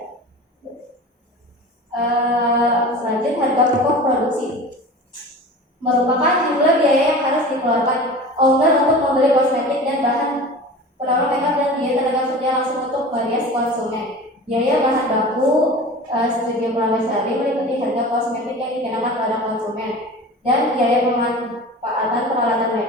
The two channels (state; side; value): normal; both; correlation 0.36